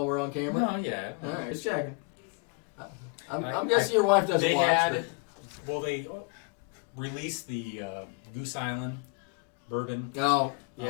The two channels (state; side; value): quieter; right; 32.1 dB